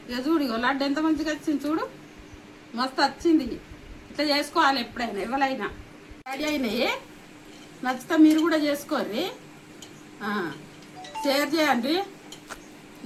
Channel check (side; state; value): both; identical; correlation 1.00